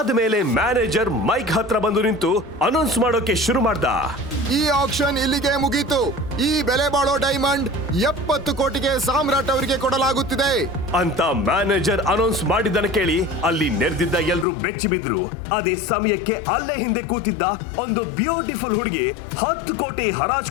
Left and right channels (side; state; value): right; drops out; at 14.5 s